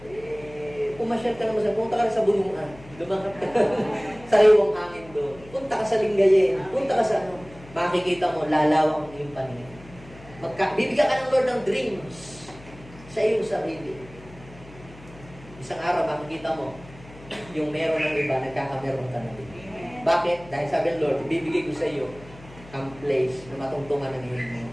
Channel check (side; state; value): left; noise; hum, 20 dB below the sound